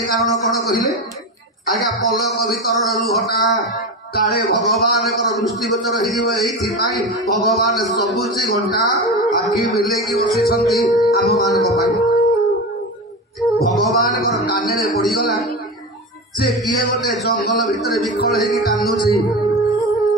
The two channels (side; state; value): both; normal; correlation 0.23